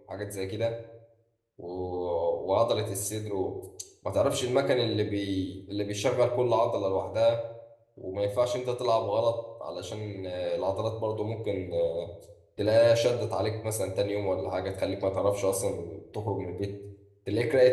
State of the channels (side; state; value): both; identical; correlation 1.00